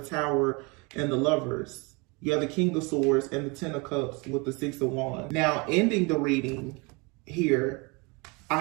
Tower and the Lovers. You have the King of Swords and the Ten of Cups with the Six of Wands. Now, ending the reading here, I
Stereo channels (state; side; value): quieter; left; 28.3 dB